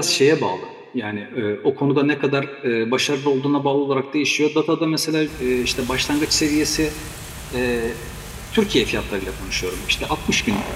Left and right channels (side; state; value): both; identical; correlation 1.00